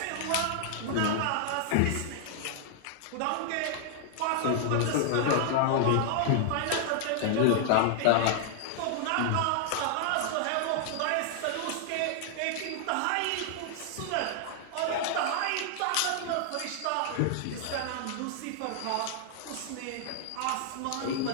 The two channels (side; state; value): both; different; correlation -0.01